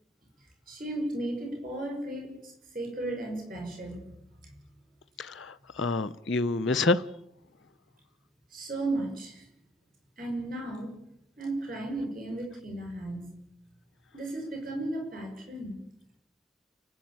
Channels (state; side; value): normal; both; correlation 0.57